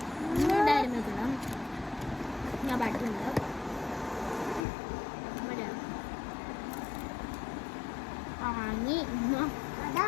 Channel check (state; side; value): drops out; right; at 4.7 s